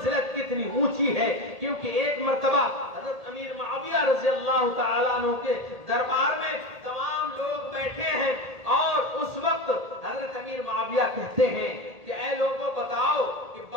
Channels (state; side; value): late; left; 1.8 ms